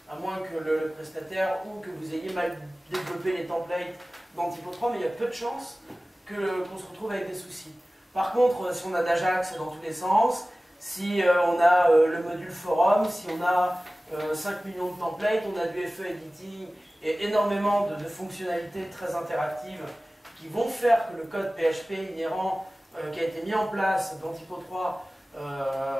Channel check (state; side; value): normal; both; correlation 0.97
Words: à moins que le prestataire ou que vous ayez mal développé les templates dans Typo 3, mais il y a peu de chances qu'on se retrouve avec des soucis. Par contre, si on a d'Ajax dans tous les sens, si on a le module forum, si on a 5 millions de templates, on a du FE editing et énormément de fonctionnalités très interactives qui vont faire que le code PHP inhérent qui a été mis en place dans Typo 3